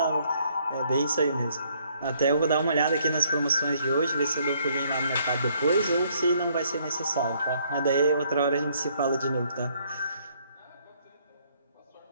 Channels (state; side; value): inverted; both; correlation -0.67